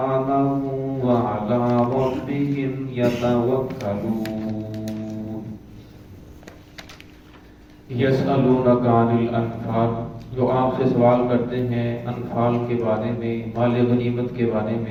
وعلى ربهم يتوكلون. يسألونك عن الأنفال، جو آپ سے سوال کرتے ہیں انفال کے بارے میں، مال غنیمت کے بارے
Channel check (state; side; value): identical; both; correlation 1.00